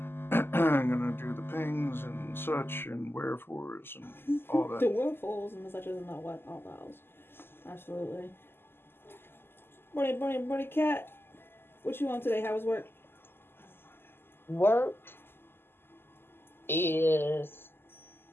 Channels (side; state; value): right; late; 0.11 ms